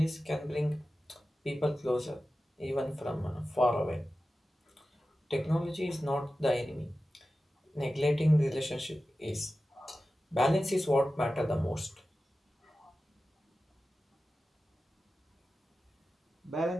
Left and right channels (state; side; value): normal; both; correlation 0.94